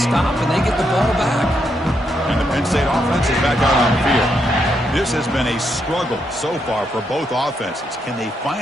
stop and they get the ball back. And the Penn State offense is back out on the field. This has been a struggle so far for both offenses. Can they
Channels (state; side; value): normal; both; correlation 0.79